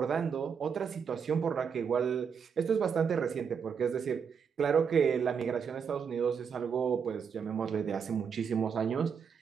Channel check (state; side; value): quieter; left; 6.7 dB